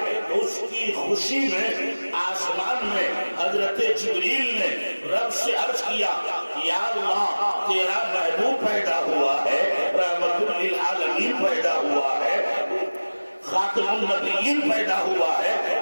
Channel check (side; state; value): both; inverted; correlation -1.00